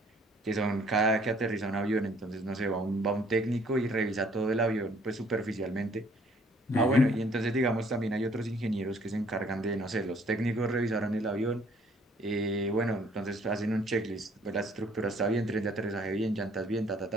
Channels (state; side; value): normal; both; correlation 0.61